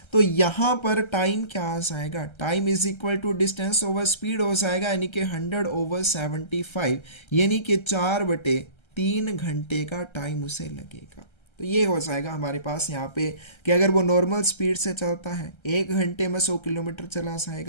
तो यहाँ पर टाइम क्या आ जाएगा, time is equal to distance over speed हो जाएगा, यानी कि 100/75, यानी कि 4/3 घंटे का टाइम उसे लगेगा। तो ये हो जाएगा हमारे पास यहाँ पे कि अगर वो नॉर्मल स्पीड से चलता है 1 घंटे में 100 किलोमीटर चला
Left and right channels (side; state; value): right; late; 1.3 ms